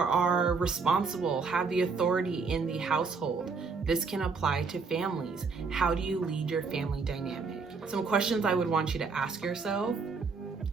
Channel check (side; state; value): left; quieter; 4.8 dB